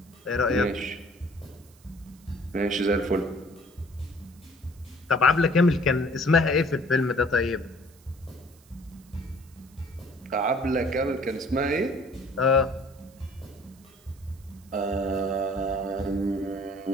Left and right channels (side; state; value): right; noise; hiss, 28 dB below the sound